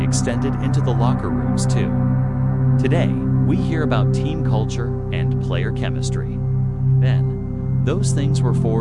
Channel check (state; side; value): identical; both; correlation 1.00